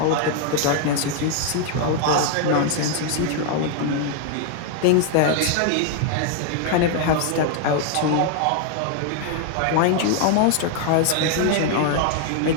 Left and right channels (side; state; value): both; different; correlation 0.00